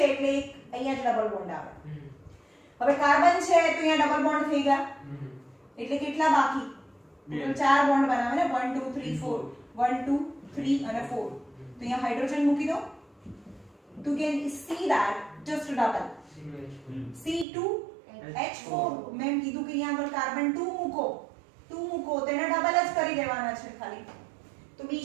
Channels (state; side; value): drops out; left; at 17.4 s